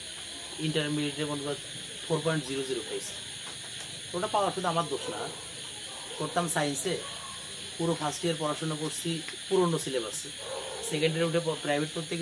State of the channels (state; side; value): identical; both; correlation 1.00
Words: ইন্টারমিডিয়েটে মনে কর 4.00 পেয়েছি। ওটা পাওয়া শুধু আমার দোষ না, করতাম সায়েন্সে, পুরো ফার্স্ট ইয়ার পড়াশোনা করছি পুরনো সিলেবাসে। সেকেন্ড ইয়ারে উঠে প্রাইভেট করতে